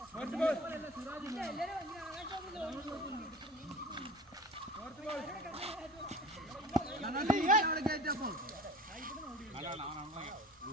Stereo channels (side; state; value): both; normal; correlation 0.39